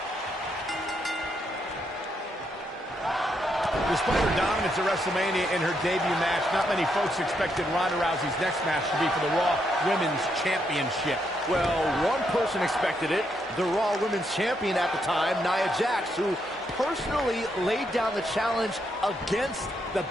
Despite her dominance at WrestleMania in her debut match, not many folks expected Ronda Rousey's next match to be for the Raw Women's Championship. Well, one person expected it, the Raw Women's Champion at the time, Nia Jax, who personally laid down the challenge against the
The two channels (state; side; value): normal; both; correlation 0.78